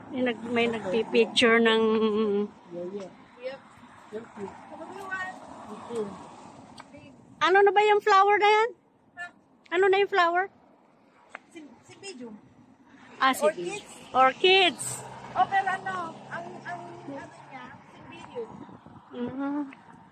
May nagpipicture ng... Yeah. Yep. Yep. Ano na ba yung flower na yan? Ano na yung flower? Si Bidyo. Ah, sige. Orchids. Oh, pero ano niya, si Bidyo.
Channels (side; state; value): both; identical; correlation 1.00